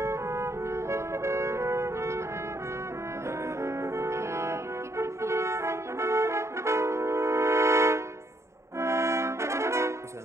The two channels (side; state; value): left; late; 0.14 ms